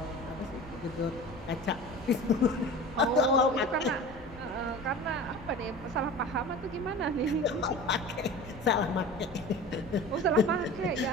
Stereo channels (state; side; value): normal; both; correlation 0.36